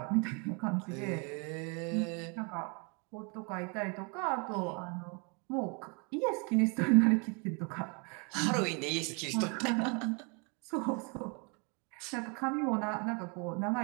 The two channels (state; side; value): quieter; left; 33.8 dB